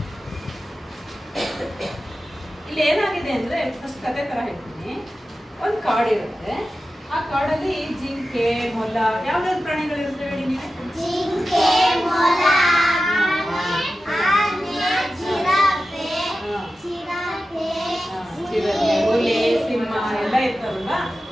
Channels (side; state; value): both; normal; correlation 0.93